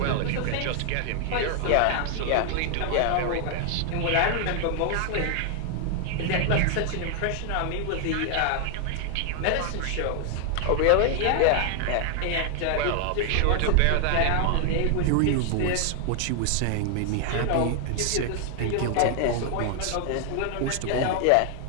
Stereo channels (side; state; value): both; different; correlation 0.00